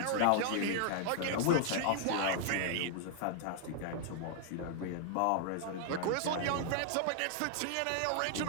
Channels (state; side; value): different; both; correlation 0.00